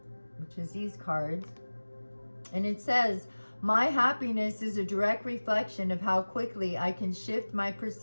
which is these cards. And it says, my happiness is a direct reflection of how quickly I can shift my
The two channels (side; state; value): both; inverted; correlation -1.00